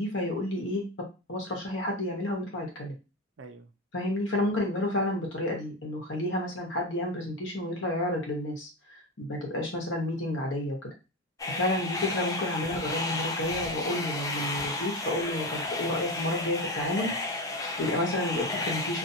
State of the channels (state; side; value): normal; both; correlation 0.18